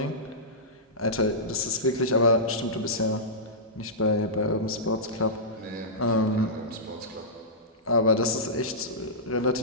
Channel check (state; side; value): normal; both; correlation -0.15